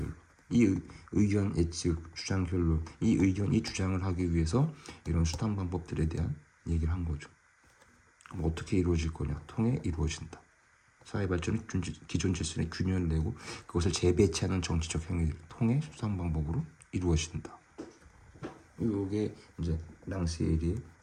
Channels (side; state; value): both; identical; correlation 1.00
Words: 이 의견 예측 주장 결론, 이 주장을 하기 위해서 이런 수단 방법들에 대한 얘기를 한 거죠. 그럼 어떻게 이루어질 거냐? 통해 이루어진다. 사회 발전은 기존 질서의 균형을 내고 그것을 재배치하는 정치적 행위를 통해 수단 방법으로 이루어진다. 이게 이제 랑시에리의